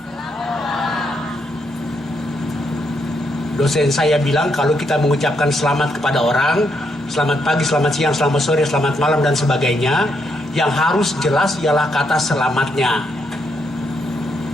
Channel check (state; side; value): normal; both; correlation 0.77